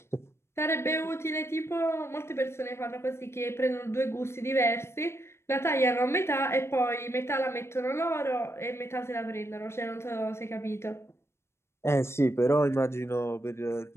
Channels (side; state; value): right; late; 0.13 ms